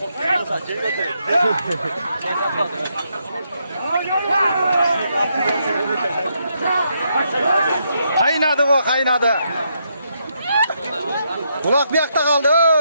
Kaynadı bu, kaynadı. Ulak bir yakta kaldı.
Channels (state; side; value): inverted; both; correlation -0.78